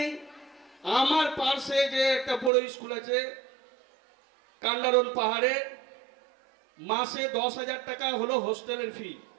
আমার পাশে যে একটা বড় স্কুল আছে কান্ডারন পাহাড়ে, মাসে 10,000 টাকা হলো হোস্টেলের ফি।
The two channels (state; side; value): drops out; left; at 2.5 s